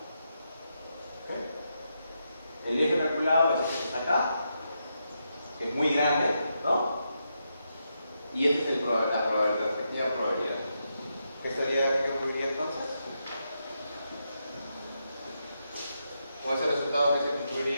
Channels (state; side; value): inverted; both; correlation -0.83